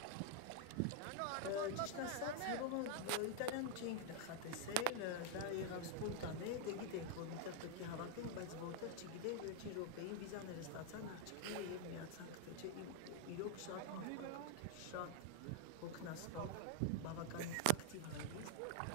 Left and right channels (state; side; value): different; both; correlation 0.00